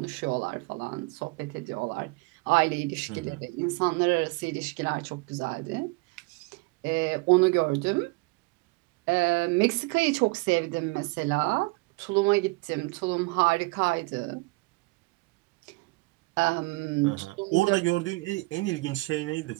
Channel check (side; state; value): left; quieter; 25.2 dB